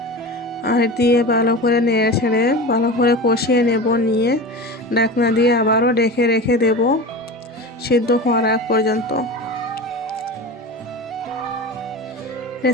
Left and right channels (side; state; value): both; normal; correlation 0.29